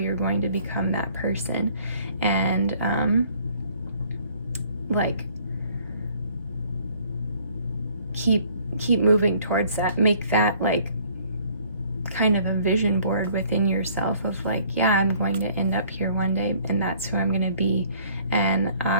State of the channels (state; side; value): inverted; both; correlation -0.58